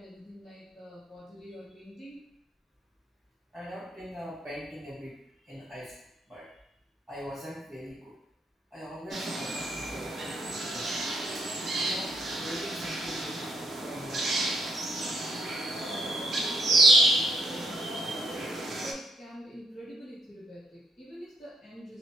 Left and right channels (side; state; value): both; normal; correlation 0.73